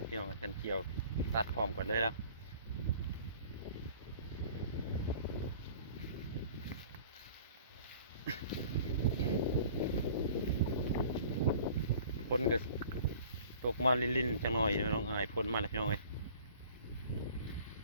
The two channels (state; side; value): inverted; both; correlation -0.48